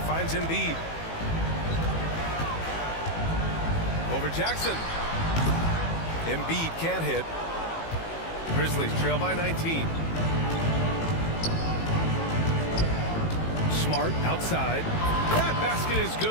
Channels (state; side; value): late; right; 18 ms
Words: finds Embiid. Over Jackson. Embiid can't hit. Grizzlies trail by 19. Smart outside. That basket is